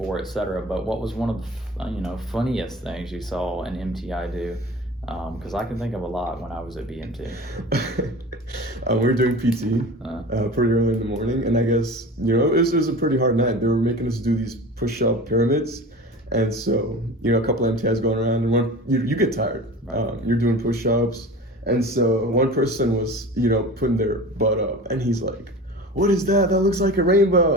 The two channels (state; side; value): normal; both; correlation 0.36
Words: etc. But what was one of the funniest things you saw an MTI do? Because I can think of a lot when I was at BMT. We were doing PT pretty early in the morning, and I guess it was a pretty hard night. They were making us do these push-up pyramids, and so a couple of MTIs going around, and you get tired. Right. You're doing push-ups. And so one person was, putting their butt up, and he's like, "What is that? That looks like a